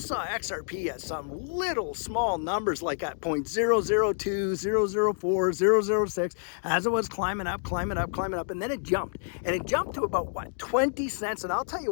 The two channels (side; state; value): right; silent; digital silence